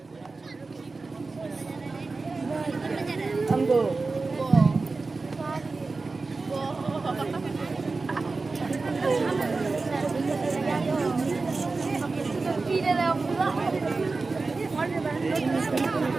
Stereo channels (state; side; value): quieter; left; 3.9 dB